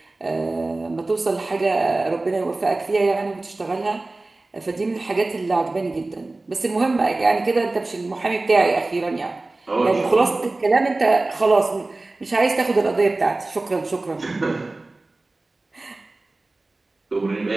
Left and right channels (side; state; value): left; quieter; 3.1 dB